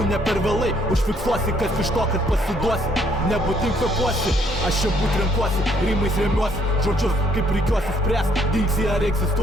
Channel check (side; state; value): both; normal; correlation 0.67